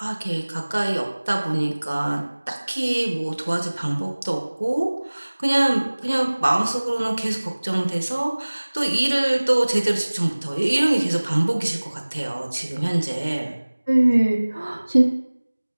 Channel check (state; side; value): inverted; both; correlation -1.00